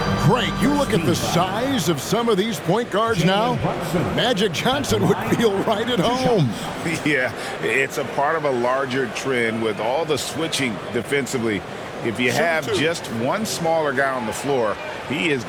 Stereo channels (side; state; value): both; identical; correlation 1.00